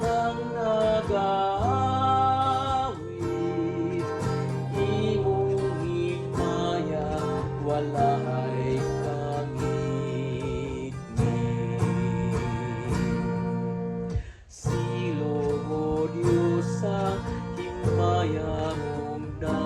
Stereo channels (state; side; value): identical; both; correlation 1.00